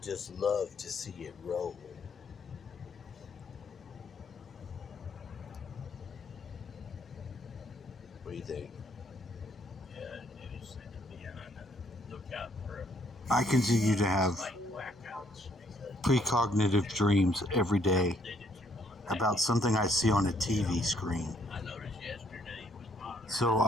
love to see it roll. What do you think? Yeah, it is said to be on the lookout for I continue to have precognitive dreams every day about something I see on a TV screen. I noticed yesterday was modern. So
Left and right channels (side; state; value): both; normal; correlation 0.68